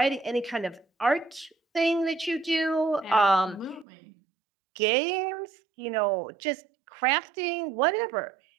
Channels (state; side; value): drops out; left; at 3.9 s